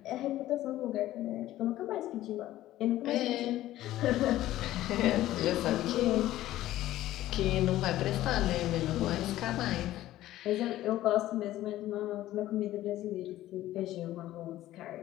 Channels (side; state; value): right; quieter; 14.6 dB